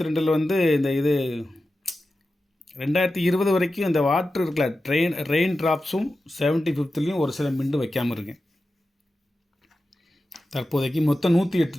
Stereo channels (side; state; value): both; normal; correlation 0.92